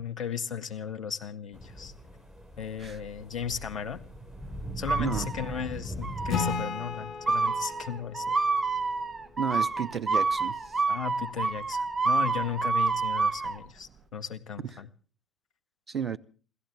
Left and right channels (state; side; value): normal; both; correlation 0.68